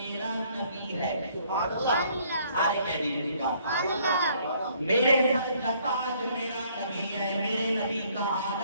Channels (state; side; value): inverted; both; correlation -0.63